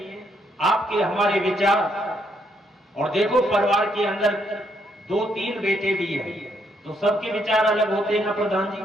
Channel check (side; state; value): both; normal; correlation 0.74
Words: आपके हमारे विचार, और देखो परिवार के अंदर 2-3 बेटे भी हैं, तो सबके विचार अलग होते हैं ना प्रधान जी,